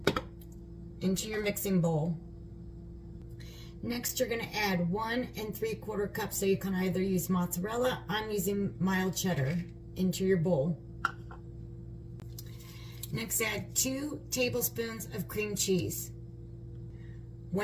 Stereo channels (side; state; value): both; identical; correlation 1.00